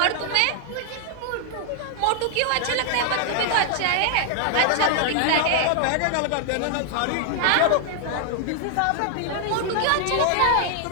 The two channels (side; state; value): both; different; correlation 0.00